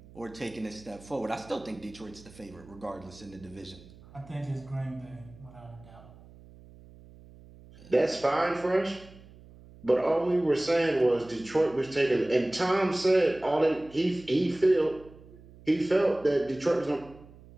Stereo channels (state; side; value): noise; right; hum, 22 dB below the sound